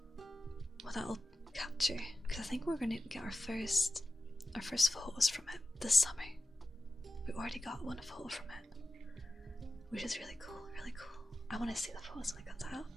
What that'll capture, because I think we're gonna get our first photos from it this summer. We already got one photo from it, which is really cool. I want to see the photos when it comes out.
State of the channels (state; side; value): normal; both; correlation 0.94